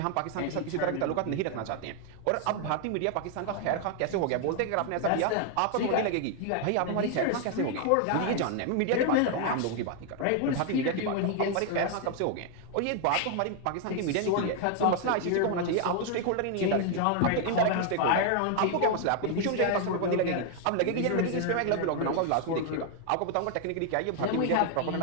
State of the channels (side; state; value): both; different; correlation 0.00